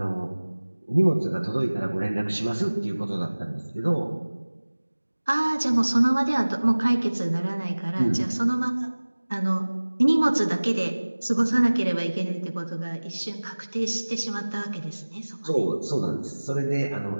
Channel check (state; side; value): inverted; both; correlation -1.00